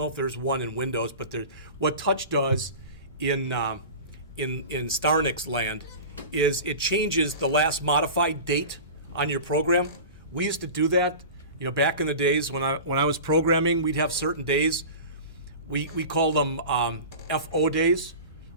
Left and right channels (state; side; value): inverted; both; correlation -0.33